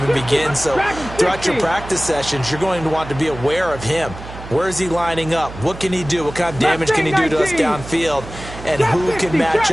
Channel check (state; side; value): noise; right; hum, 13 dB below the sound